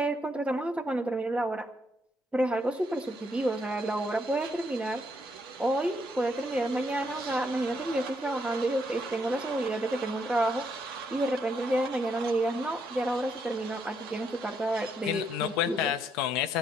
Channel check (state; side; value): normal; both; correlation 0.75